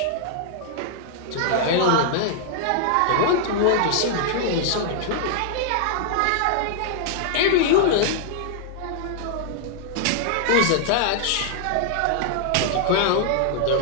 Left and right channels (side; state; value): both; different; correlation -0.01